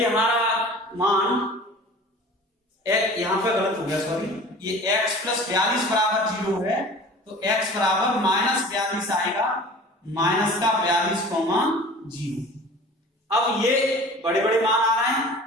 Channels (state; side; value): normal; both; correlation 0.42